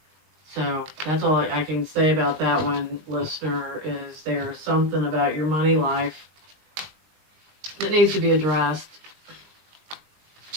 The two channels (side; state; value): left; late; 20 ms